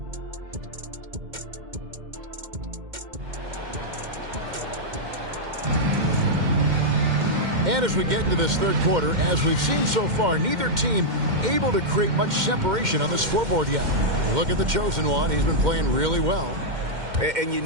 And as we get into this third quarter, as we've seen so far, neither team able to create much separation on the scoreboard yet. Look at the chosen one. He's been playing really well. And you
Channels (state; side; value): late; left; 2.1 ms